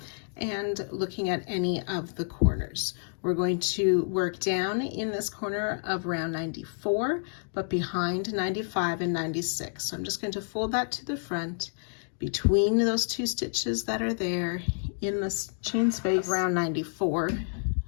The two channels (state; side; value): silent; right; digital silence